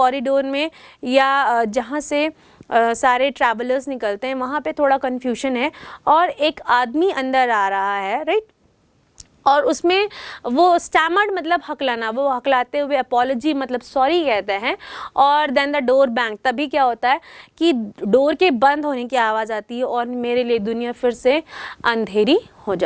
में या जहाँ से सारे ट्रैवलर्स निकलते हैं वहाँ पे थोड़ा कन्फ्यूजन है और एक आदमी अंदर आ रहा है, राइट, और उसमें वो स्टैमर्ड मतलब हकलाना, वो हकलाते हुए अपॉलॉजी मतलब सॉरी कहते हैं. और देन द डोर बैंग, तभी क्या होता है कि डोर के बंद होने की आवाज़ आती है और मेरे लिए दुनिया फिर से अंधेरी हो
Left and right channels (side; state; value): both; identical; correlation 1.00